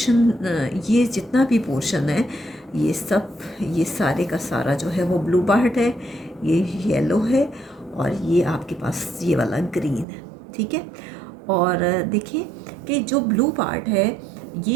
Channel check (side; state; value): left; drops out; at 10.1 s